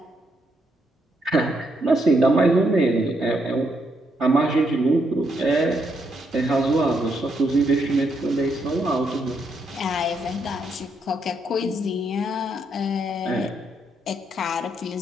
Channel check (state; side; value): normal; both; correlation 0.76